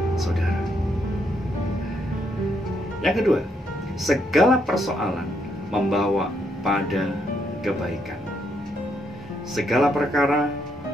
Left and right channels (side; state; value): both; normal; correlation 0.75